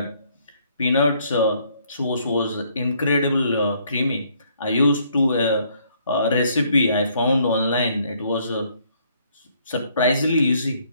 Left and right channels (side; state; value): both; inverted; correlation -0.67